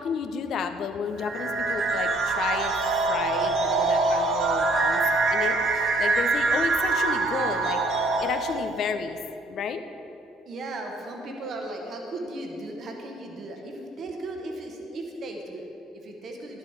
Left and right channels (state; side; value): normal; both; correlation 0.61